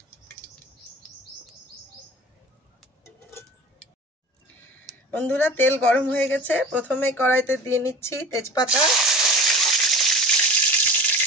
বন্ধুরা, তেল গরম হয়ে গেছে। প্রথমে কড়াইতে দিয়ে নিচ্ছি তেজপাতা,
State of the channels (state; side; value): normal; both; correlation 0.36